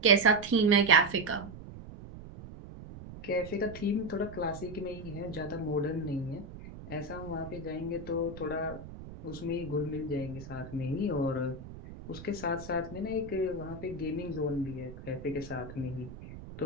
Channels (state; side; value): noise; right; rumble, 13 dB below the sound